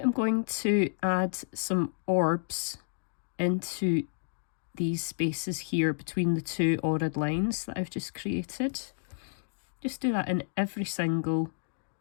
going to add some orbs into these spaces here between the two ordered lines that I've just created. Just do that in every single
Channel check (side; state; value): right; silent; digital silence